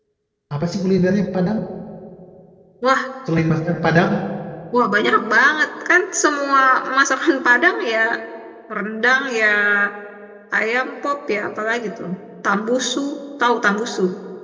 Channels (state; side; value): identical; both; correlation 1.00